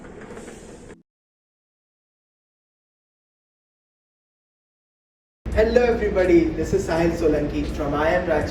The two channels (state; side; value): identical; both; correlation 1.00